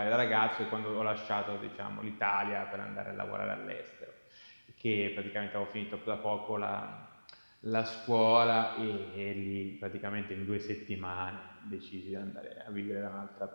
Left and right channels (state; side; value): inverted; both; correlation -1.00